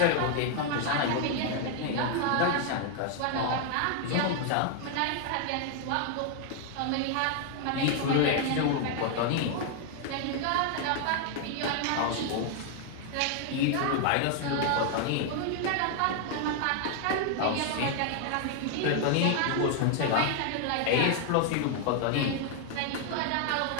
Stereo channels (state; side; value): different; both; correlation 0.00